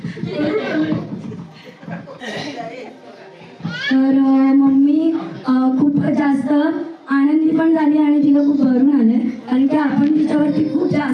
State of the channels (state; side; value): identical; both; correlation 1.00